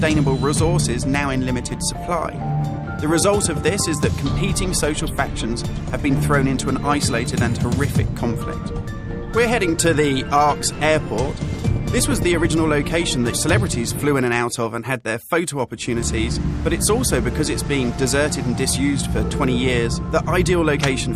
resources now in limited supply. The result of this is that competing social factions have been thrown into an isolated and horrific conflict. We're heading to the Ark's airport. This was the original location that celebrities flew in and out of and had their photo opportunities, but it's also, because it's being deserted and disused for 20 years, the ideal location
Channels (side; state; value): both; identical; correlation 1.00